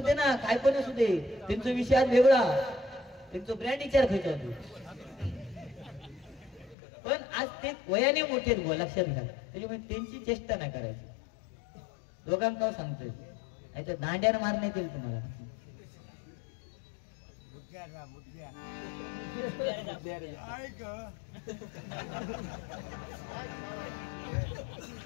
दे ना, काय पण असू दे, त्यांचा विषय आज वेगळा, त्यांचा ब्रँड विचार खायचा होतो. पण आज ते वयाने मोठे बुवा, लक्षात घ्या. त्याच्यामुळे त्यांची चेष्टा नाही करायची. दोघांना सांगतोय, नाहीतर दांड्यानं मारण्यात येईल तुम्हाला.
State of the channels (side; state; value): right; drops out; at 6.8 s